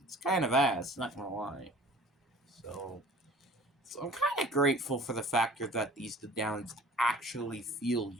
it's kind of ass, not gonna lie. So I'm kind of grateful for the factor that these Ledallians actually feel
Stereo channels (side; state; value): both; normal; correlation 0.47